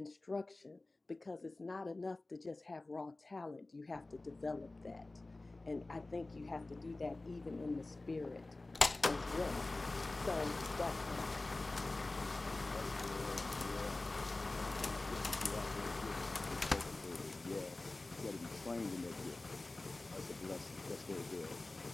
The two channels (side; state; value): right; quieter; 3.0 dB